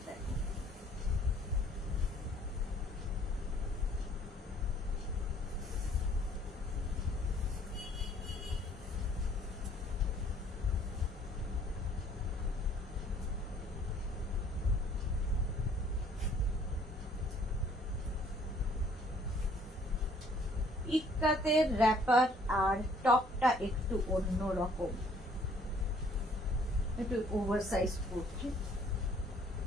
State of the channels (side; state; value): both; normal; correlation 0.59